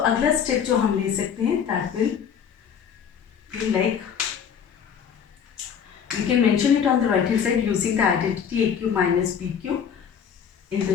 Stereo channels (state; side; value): quieter; right; 7.7 dB